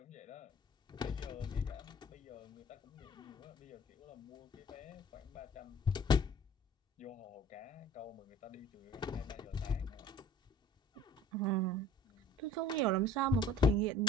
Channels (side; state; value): both; normal; correlation 0.49